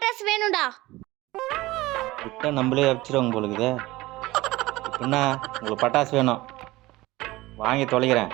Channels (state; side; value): quieter; left; 19.1 dB